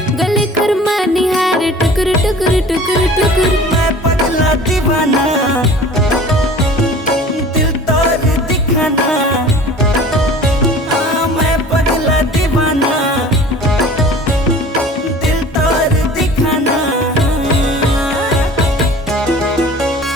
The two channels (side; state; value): both; normal; correlation 0.44